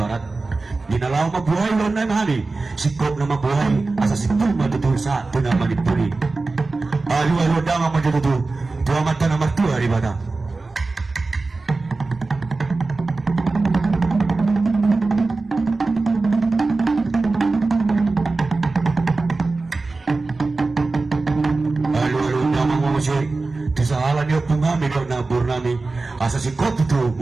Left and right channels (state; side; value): quieter; left; 3.6 dB